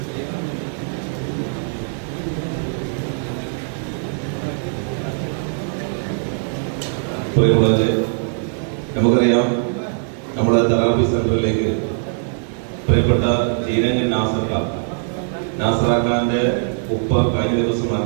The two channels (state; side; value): silent; left; 61 dB below the other